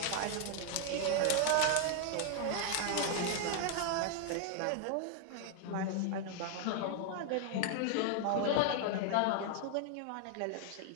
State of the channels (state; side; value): different; both; correlation 0.00